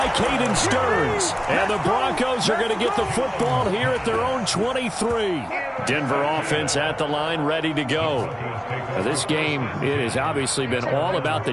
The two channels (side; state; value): both; identical; correlation 1.00